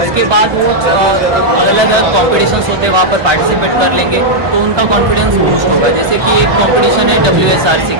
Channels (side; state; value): left; late; 1.2 ms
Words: उसके बाद वो अलग अलग कॉम्पिटिशन्स होते हैं वहाँ पर पार्टिसिपेट कर लेंगे तो उनका कॉन्फिडेंस बूस्ट होगा। जैसे कि एक कॉम्पिटिशन है WSRC